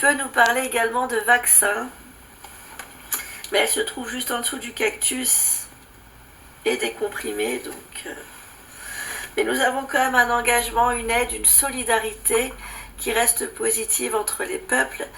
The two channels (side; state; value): both; identical; correlation 1.00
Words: nous parler également de vaccin, mais elle se trouve juste en dessous du cactus et des comprimés. Mais nous avons quand même un engagement, une aide, une solidarité qui reste positive entre les peuples